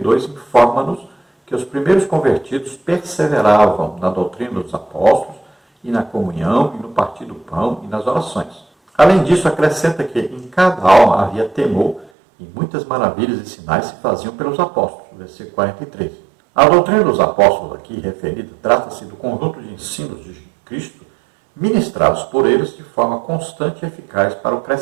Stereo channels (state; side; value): drops out; left; at 12.1 s